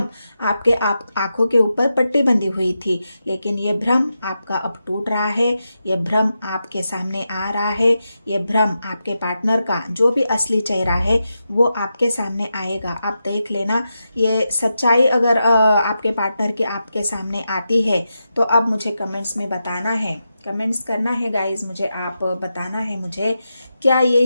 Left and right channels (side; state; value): both; inverted; correlation -0.88